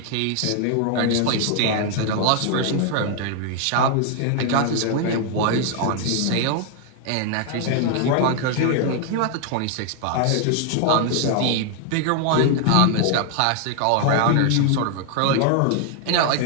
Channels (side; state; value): both; different; correlation 0.00